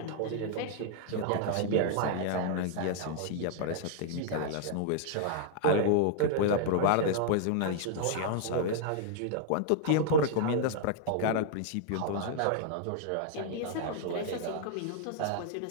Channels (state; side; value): different; both; correlation -0.01